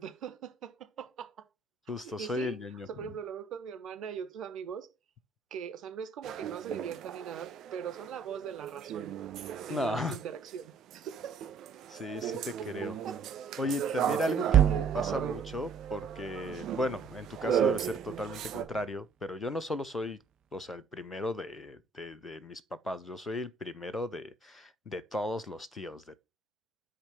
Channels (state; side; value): quieter; left; 4.5 dB